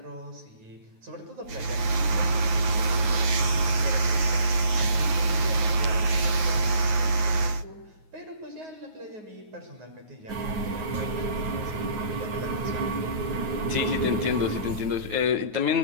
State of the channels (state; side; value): late; left; 9.4 ms